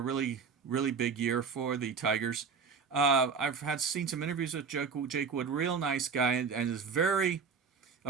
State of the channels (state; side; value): quieter; left; 5.6 dB